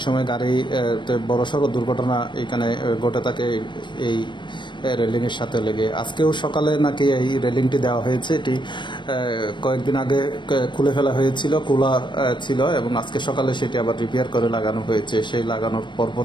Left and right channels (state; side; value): late; right; 0.22 ms